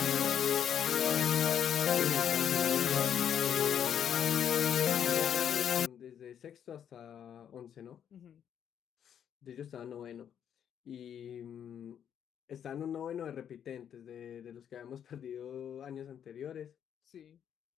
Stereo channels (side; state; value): right; quieter; 8.9 dB